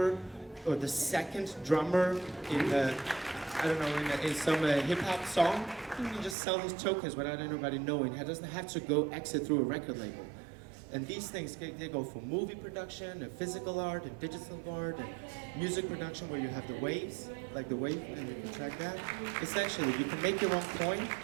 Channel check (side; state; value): left; drops out; at 6.4 s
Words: or the second drummer in in some hip-hop song, you can just sell those tokens without anybody knowing. He doesn't have to go exit through a record label. And these things, they go for movie production, and physical art, and digital art, and music production where you have the waves, like the wave, and you can track that. Essentially, you can make your own coin,